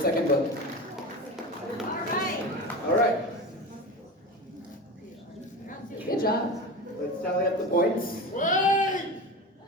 book. All right. Good job. Let's tally up the points. Wait!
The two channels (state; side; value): normal; both; correlation 0.27